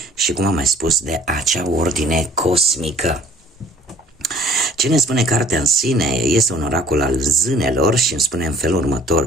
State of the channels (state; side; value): normal; both; correlation 0.55